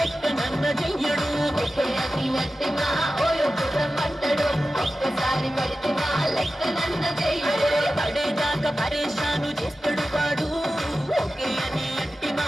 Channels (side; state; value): both; normal; correlation 0.94